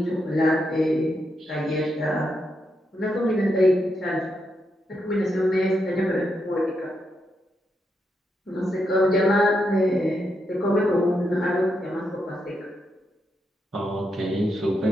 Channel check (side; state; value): both; normal; correlation 0.82